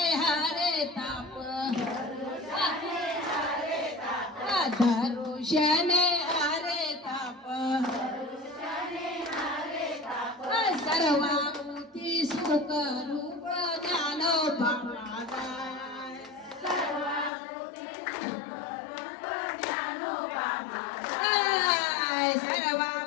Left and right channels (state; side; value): drops out; right; at 17.3 s